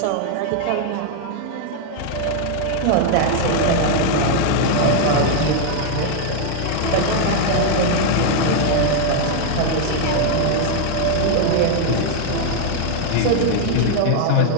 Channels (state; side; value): different; both; correlation 0.00